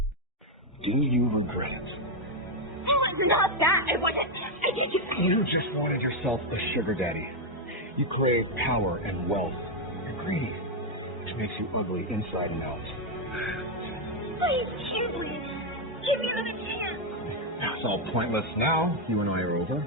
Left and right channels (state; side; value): normal; both; correlation 0.02